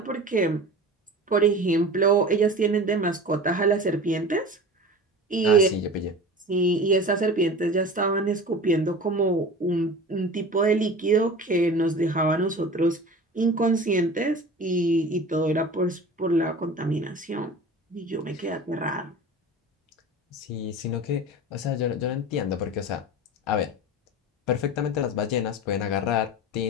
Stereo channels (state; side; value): normal; both; correlation 0.35